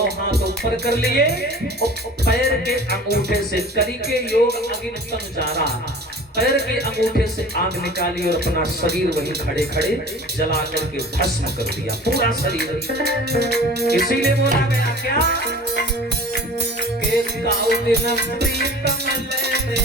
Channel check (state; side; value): normal; both; correlation 0.42